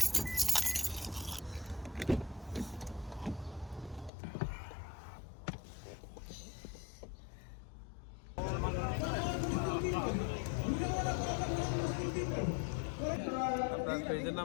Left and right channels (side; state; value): right; drops out; at 4.1 s